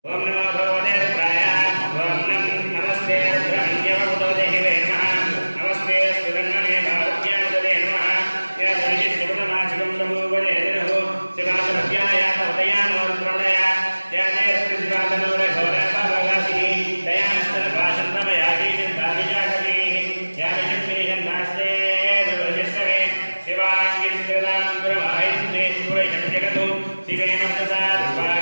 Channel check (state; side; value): inverted; both; correlation -1.00